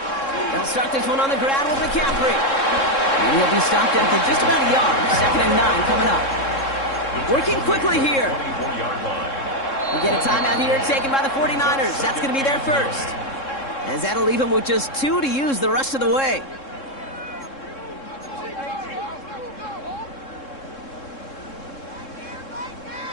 They'll start this one on the ground with McCaffrey. And he'll be stopped after just about a yard. Second and 9 coming up. Working quickly here. We get a timeout here taken by the 49ers. That's going to be their first. As that'll leave them with just 2 to use the rest of the way.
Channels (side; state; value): right; late; 3.7 ms